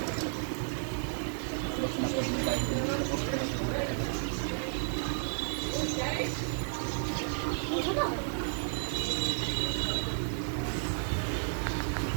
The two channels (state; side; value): silent; left; digital silence